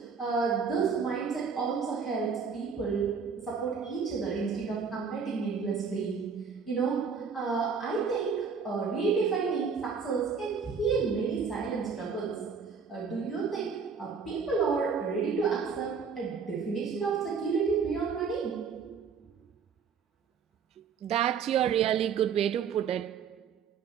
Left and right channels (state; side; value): quieter; left; 5.9 dB